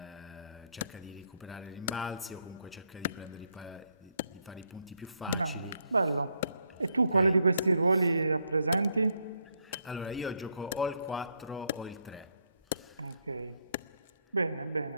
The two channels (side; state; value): both; inverted; correlation -0.74